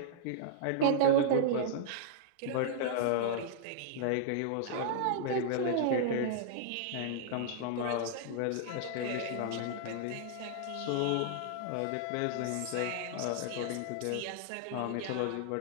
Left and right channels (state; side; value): different; both; correlation -0.01